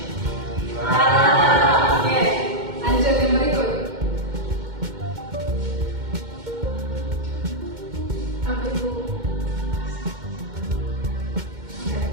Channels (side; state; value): left; late; 2.1 ms